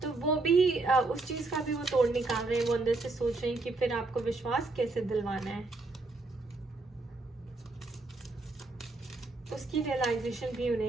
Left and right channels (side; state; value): left; quieter; 3.3 dB